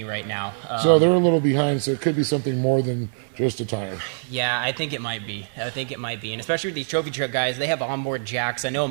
right now. So they're a little behind, so it could be something more than just a tire. Yeah, I think it might be. And especially with these trophy truck guys, they have onboard jacks. I know in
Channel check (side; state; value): left; silent; digital silence